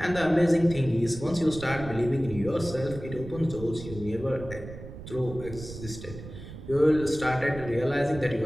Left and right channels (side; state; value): right; noise; rumble, 12 dB below the sound